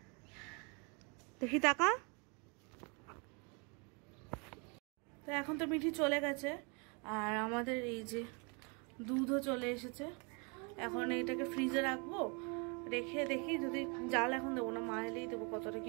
দেখি টাকা। তো এখন তো মিঠি চলে গেছে, আর আমাদের এই যে দুধও চলে এসেছে। এখন এইটাকে ফ্রিজে রাখবো, রেখে দেখি যদি জাল এখন দেবো না, মা এলেই দেবো কতটা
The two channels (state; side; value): quieter; left; 33.5 dB